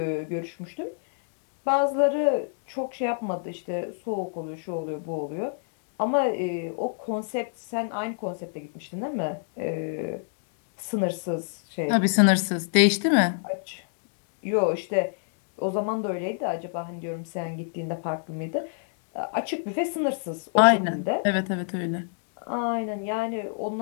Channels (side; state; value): right; silent; digital silence